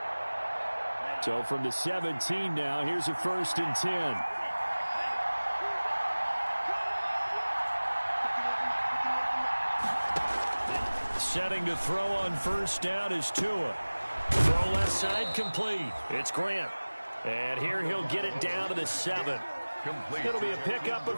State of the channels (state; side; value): inverted; both; correlation -1.00